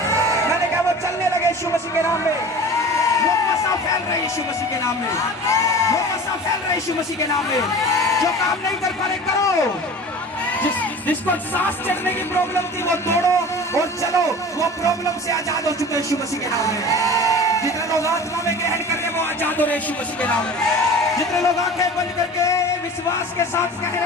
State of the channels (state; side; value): normal; both; correlation 0.38